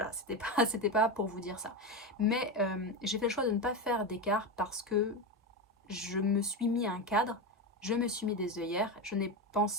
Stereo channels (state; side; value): normal; both; correlation 0.17